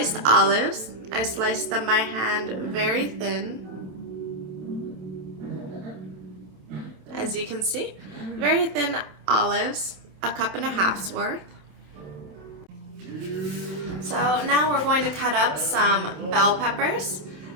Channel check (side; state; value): left; late; 27 ms